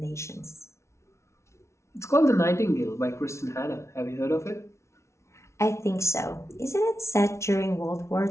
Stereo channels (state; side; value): late; right; 0.13 ms